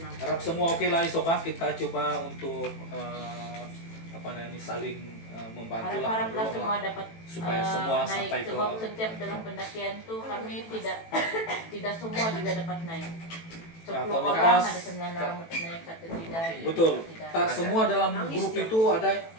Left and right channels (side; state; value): right; late; 18 ms